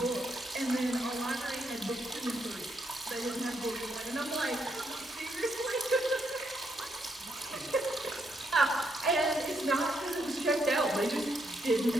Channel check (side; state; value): both; normal; correlation 0.77